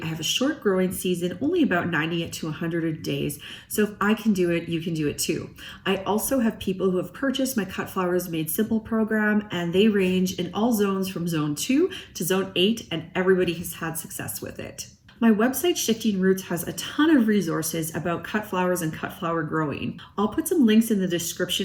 I have a short growing season, only about 90 to 100 days. So if I can do it, you can do it too. I also have people who have purchased my Cut Flowers Made Simple program, and they range in all zones from zone 2 to zone 8, and everybody has had success with it. My website, Shifting Roots, has a ton of resources about cut flowers and cut flower growing. I'll put some links in the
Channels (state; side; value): identical; both; correlation 1.00